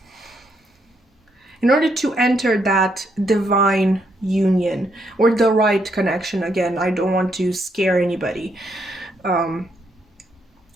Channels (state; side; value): normal; both; correlation 0.76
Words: order to enter that divine union or the right connection, again, I don't want to scare anybody.